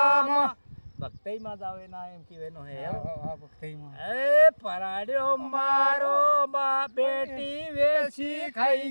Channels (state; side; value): inverted; both; correlation -1.00